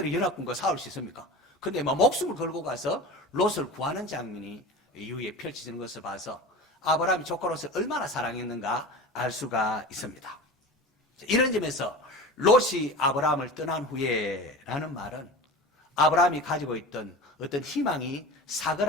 연합군과 싸울 수 있습니까? 근데 목숨을 걸고 가서 롯을 구하는 장면이 이후에 펼쳐지는 것을 봐서 아브라함이 조카 롯을 얼마나 사랑했는가 알 수가 있습니다. 이런 점에서 롯이 아브라함을 떠난 후에라는 말은 아브라함이 가지고 있던 어떤 희망이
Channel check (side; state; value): both; normal; correlation 0.33